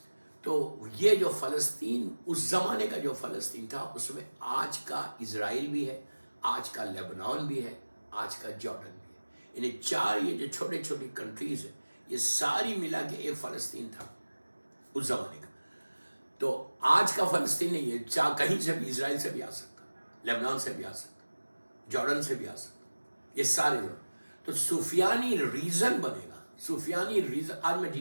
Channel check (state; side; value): inverted; both; correlation -1.00